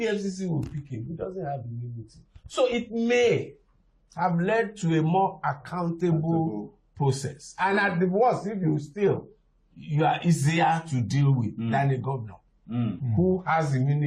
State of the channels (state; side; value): identical; both; correlation 1.00